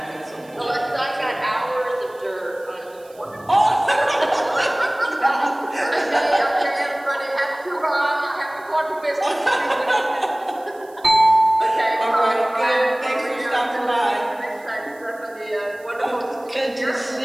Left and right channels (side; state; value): right; noise; hiss, 27 dB below the sound